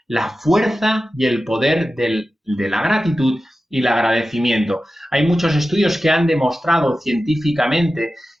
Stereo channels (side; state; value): both; normal; correlation 0.94